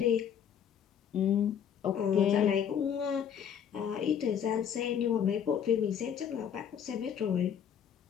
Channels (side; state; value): right; quieter; 8.4 dB